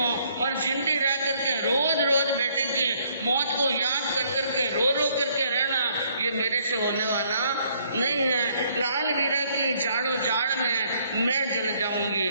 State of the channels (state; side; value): inverted; both; correlation -0.66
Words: और जिंदी रह करके रोज रोज बेटे की मौत को याद कर करके रो रो करके रहना, ये मेरे से होने वाला नहीं है। लाल वीरा की जाड़ो जाड़ में मैं जल जाऊंगी,